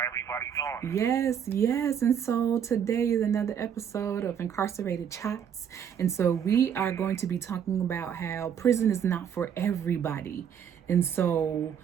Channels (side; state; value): left; quieter; 8.3 dB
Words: everybody doing? Yes. And so today is another episode of Incarcerated Chats. And so we are going to be talking about how prison is not for everybody. And so,